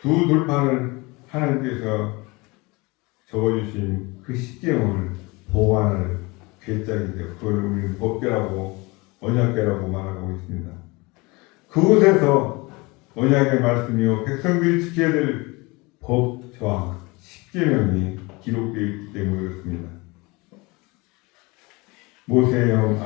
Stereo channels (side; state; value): right; quieter; 25.1 dB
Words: 두 돌판을 하나님께서 적어주신 그 십계명을 보관할 괴짝인데요. 그걸 우리는 법궤라고 언약궤라고 말하고 있습니다. 그곳에서 언약의 말씀이요 백성들이 지켜야 될 법 조항 십계명이 기록되어 있기 때문에 그렇습니다. 모세의 형